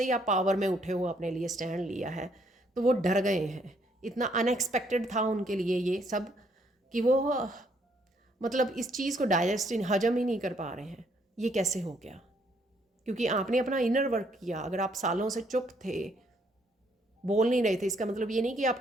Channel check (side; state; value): both; normal; correlation 0.69